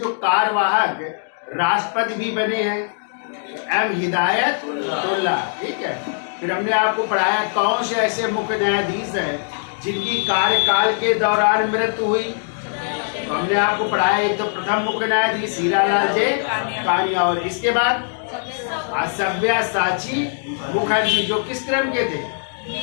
कार्यवाहक राष्ट्रपति भी बने हैं? एम हिदायतुल्लाह। ठीक है। फिर हमने आपको पढ़ाया कौन से ऐसे मुख्य न्यायाधीश है जिनकी कार्यकाल के दौरान मृत्यु हुई। तो हमने आपको पढ़ाया, एक तो प्रथम मुख्य न्यायाधीश हीरालाल जे कानिया, और इसके बाद सव्यसाची मुखर्जी, जो किस क्रम के थे?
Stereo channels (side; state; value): right; silent; digital silence